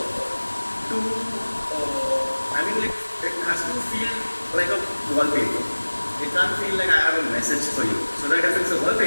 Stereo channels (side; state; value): both; inverted; correlation -1.00